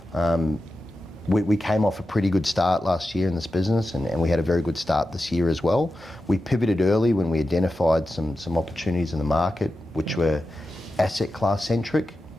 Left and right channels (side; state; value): both; normal; correlation 0.92